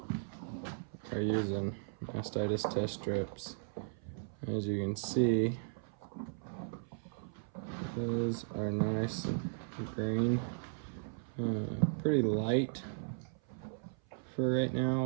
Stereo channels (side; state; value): left; silent; 53 dB below the other